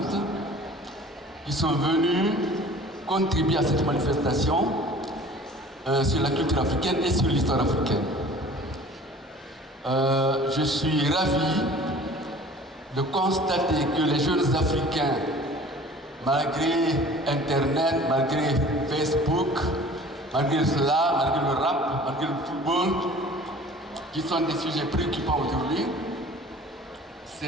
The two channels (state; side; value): normal; both; correlation 0.46